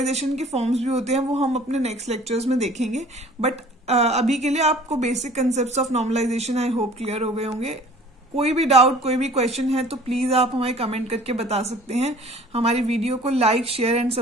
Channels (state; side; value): normal; both; correlation 0.49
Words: के फॉर्म्स भी होते हैं, वो हम अपने नेक्स्ट लेक्चर्स में देखेंगे। बट अभी के लिए आपको basic concepts of normalisation I hope clear हो गए होंगे। कोई भी डाउट, कोई भी क्वेश्चन है तो प्लीज आप हमें कमेंट करके बता सकते हैं। हमारी वीडियो को लाइक, शेयर एंड